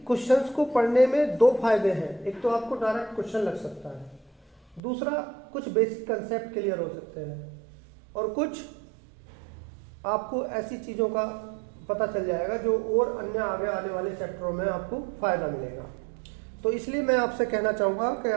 क्वेश्चंस को पढ़ने में 2 फायदे हैं। एक तो आपको डायरेक्ट क्वेश्चन लग सकता है, दूसरा कुछ बेसिक कंसेप्ट क्लियर हो सकते हैं, और कुछ आपको ऐसी चीज़ों का पता चल जाएगा जो और अन्य आगे आने वाले चैप्टरों में आपको फायदा मिलेगा। तो इसलिए मैं आपसे कहना चाहूँगा कि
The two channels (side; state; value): left; drops out; at 4.8 s